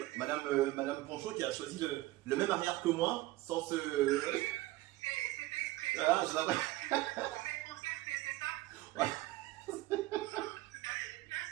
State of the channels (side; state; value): left; quieter; 18.0 dB